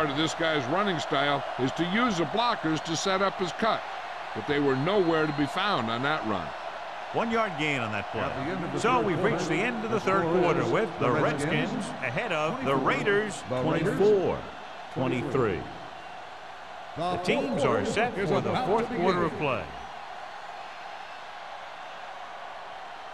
of this guy's running style is to use the blockers to set up his cut, but they were nowhere to be found on that run. 1 yard gain on that play. So we've reached the end of the third quarter with the Redskins ahead of the Raiders 24-23. The teams are set for the fourth quarter of play.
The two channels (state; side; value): identical; both; correlation 1.00